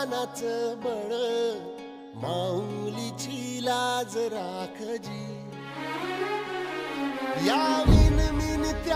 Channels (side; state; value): both; identical; correlation 1.00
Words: बळ माऊलीची लाज राखजी या मिन